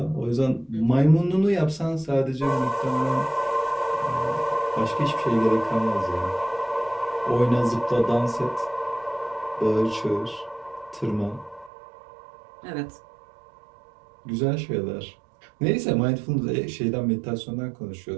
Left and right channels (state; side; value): drops out; left; at 11.7 s